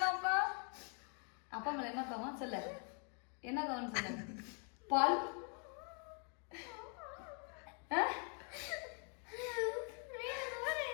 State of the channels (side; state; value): right; quieter; 39.0 dB